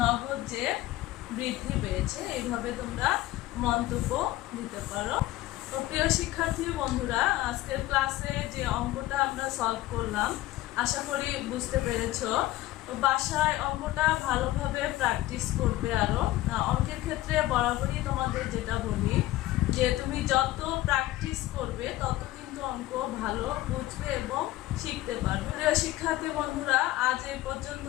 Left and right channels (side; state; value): right; quieter; 16.2 dB